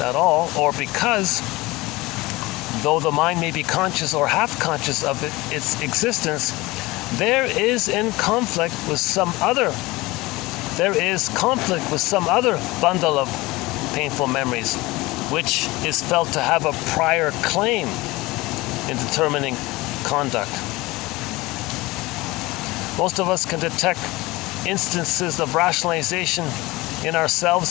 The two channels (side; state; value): right; quieter; 21.0 dB